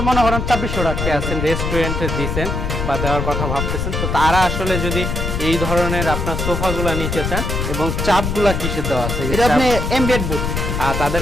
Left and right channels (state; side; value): noise; left; rumble, 2 dB below the sound